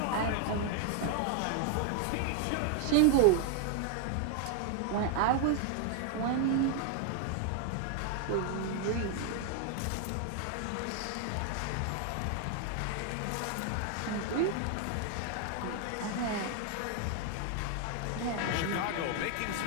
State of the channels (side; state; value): both; different; correlation 0.00